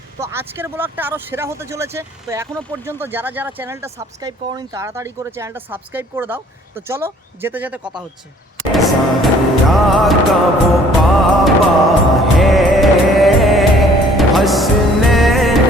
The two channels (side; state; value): both; normal; correlation 0.57